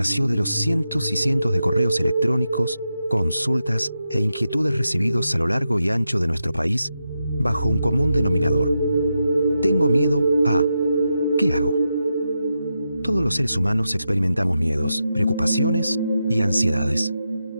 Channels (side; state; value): both; inverted; correlation -0.87